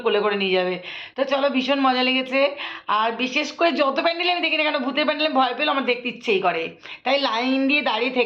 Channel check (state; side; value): identical; both; correlation 1.00